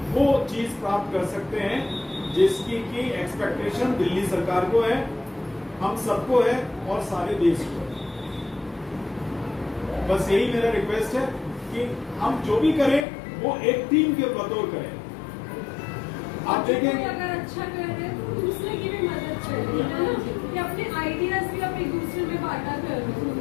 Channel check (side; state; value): right; drops out; at 13.1 s